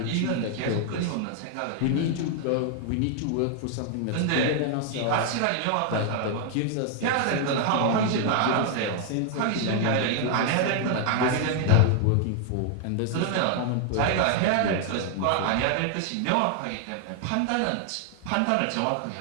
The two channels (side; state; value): both; different; correlation 0.00